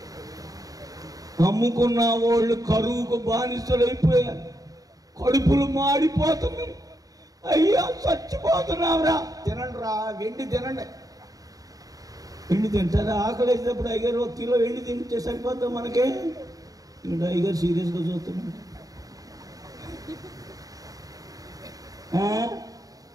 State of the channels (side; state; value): left; late; 0.18 ms